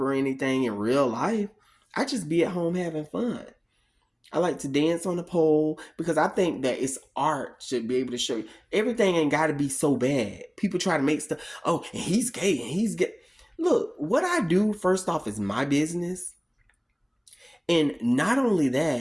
or anything in real life. I just be at home having fun. I like to dance on the pole because I think that it's art should be able to show you. Everything ain't got to be so bad. People try to make stuff, oh, and he's gay and he's gay. Look, what I do first off is my business. And not only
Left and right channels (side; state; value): both; identical; correlation 1.00